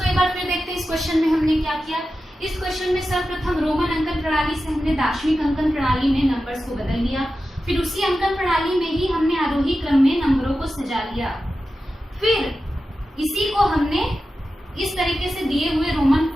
एक बार फिर देखते हैं इस क्वेश्चन में हमने क्या किया। इस क्वेश्चन में सर्वप्रथम रोमन अंकन प्रणाली से हमने दार्शनिक अंकन प्रणाली में नंबर्स को बदल लिया। फिर उसी अंकन प्रणाली में ही हमने आरोही क्रम में नंबरों को सजा लिया। फिर इसी को हमने इस तरीके से दिए हुए रोमन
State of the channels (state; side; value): normal; both; correlation 0.92